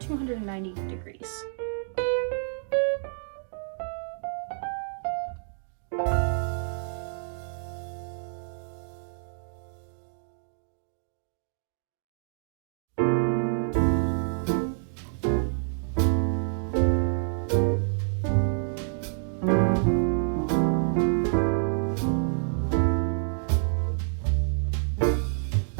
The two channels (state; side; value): silent; left; digital silence